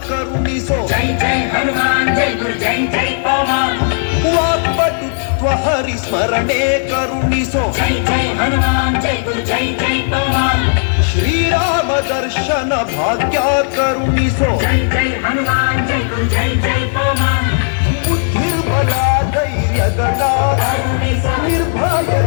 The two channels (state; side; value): silent; right; 69 dB below the other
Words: जय जय हनुमान जय गुरु जय जय पवन वाक्पटुत्व हरिस्मरणे करुणिसो जय जय हनुमान जय गुरु जय जय पवन श्रीराम दर्शन भाग्य करुणिसो जय जय हनुमान जय गुरु जय जय पवन बुद्धिर्बल धैर्यगण करुणिसो